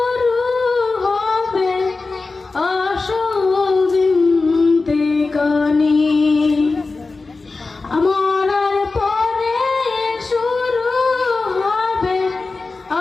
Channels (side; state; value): right; quieter; 3.8 dB